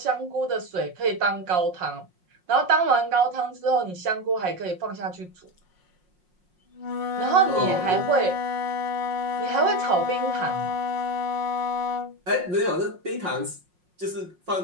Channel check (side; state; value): left; late; 5.5 ms